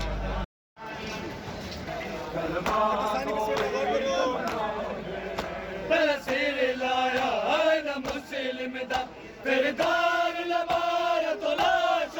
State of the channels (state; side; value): identical; both; correlation 1.00